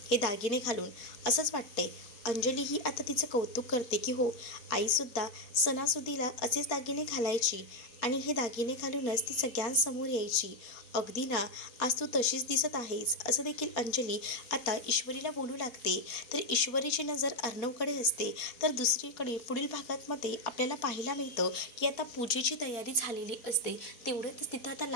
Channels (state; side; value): late; right; 4.3 ms